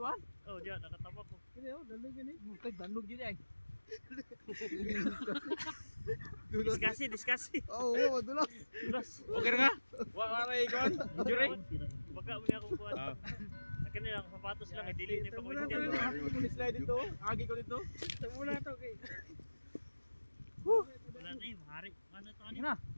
Oh, dyan, nakatapak ko. Kini oh, danlog gani. Kay danlog yun ay. Discussi. Oo, dulas. Dulas. Okay nga. Wa ra ikon. Injury. Baka mo niya akong kuhan. Akin nilang sapatos lang, dili na pa ko Muna dyan. ko ni slide dito. Agi ko dito. Muna to kay. Wala na eh, mahari. Ano to Sige ano? na.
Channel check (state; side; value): inverted; both; correlation -1.00